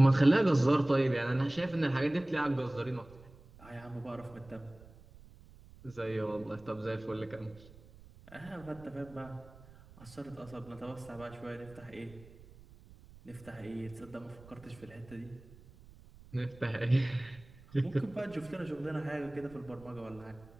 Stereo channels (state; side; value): noise; right; rumble, 22 dB below the sound